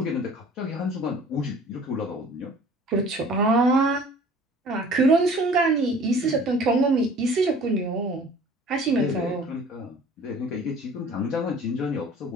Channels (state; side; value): normal; both; correlation 0.48